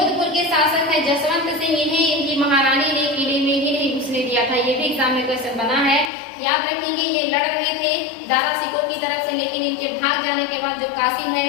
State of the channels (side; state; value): right; drops out; at 6.1 s